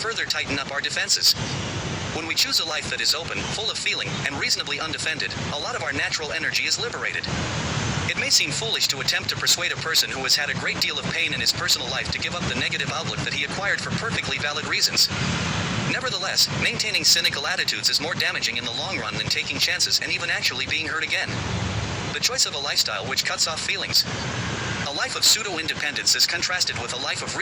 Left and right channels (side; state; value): both; identical; correlation 1.00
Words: further tighten up our defenses. When we choose a life that is open, full of feeling, and reasonably undefended, a lot of our natural energy is liberated. It may seem foolish to attempt to persuade a person who has had a great deal of pain in his personal life to give up the negative outlook that he acquired for perfectly valid reasons. Nevertheless, maintaining cynical attitudes is more damaging in the long run than taking chances and even actually being hurt again. The choice of a lifestyle which cuts off feelings. A life of pseudo-independence is contrasted with a life of